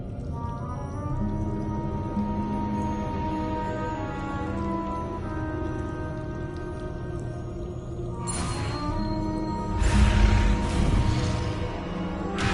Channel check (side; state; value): both; identical; correlation 1.00